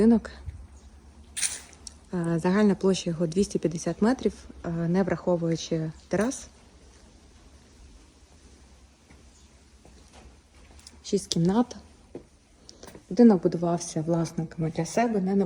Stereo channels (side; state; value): both; identical; correlation 1.00